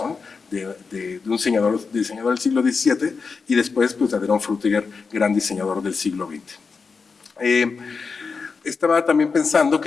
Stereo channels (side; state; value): right; quieter; 5.0 dB